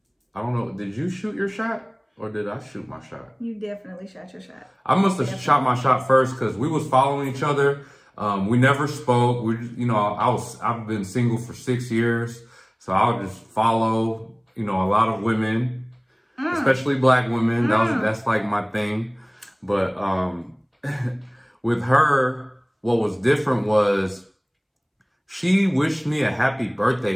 don't know, did you shoot your shot or did I shoot my shot? You definitely shot your shot. I must have shot my shot first because we was following each other. We never spoke. We, you know, I've been single for 6 years, so I would just follow, you know, a lot of women, especially black women. That's like my thing. But with her, what was different was she wished me a happy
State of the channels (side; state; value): both; identical; correlation 1.00